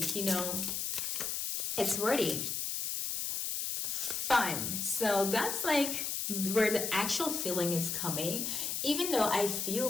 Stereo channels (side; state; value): left; noise; hiss, 1 dB below the sound